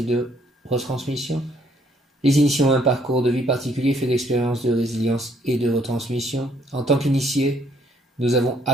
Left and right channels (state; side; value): normal; both; correlation 0.67